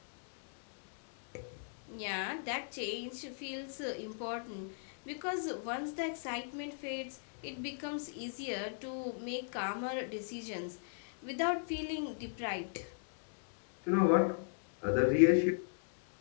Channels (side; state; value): right; silent; digital silence